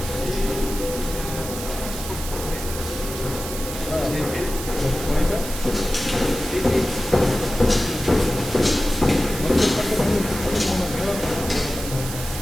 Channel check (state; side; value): noise; right; hiss, 9 dB below the sound